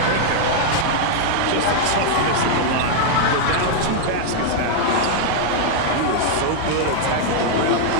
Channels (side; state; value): both; different; correlation -0.01